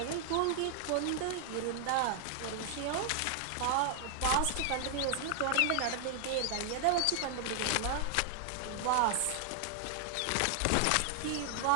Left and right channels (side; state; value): both; different; correlation 0.00